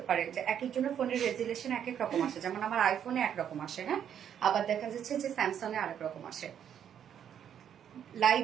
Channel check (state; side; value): quieter; left; 9.1 dB